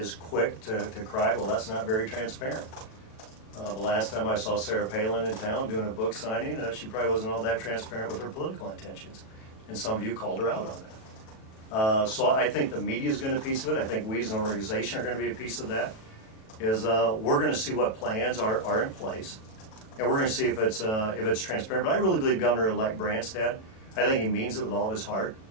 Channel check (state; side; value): late; right; 37 ms